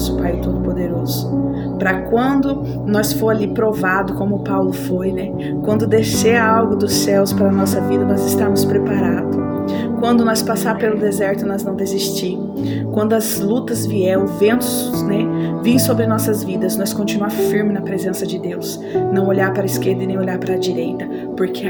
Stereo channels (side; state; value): both; identical; correlation 1.00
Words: Pai Todo-Poderoso, para quando nós for ali provado, como Paulo foi, né? Quando descer algo dos céus para a nossa vida, nós estamos preparados. Quando nós passar pelo deserto, nós não desistir. Quando as lutas vier, os ventos, né, vir sobre nossas vidas, nós continuar firme na presença de Deus. Não olhar para a esquerda e nem olhar para a direita, porque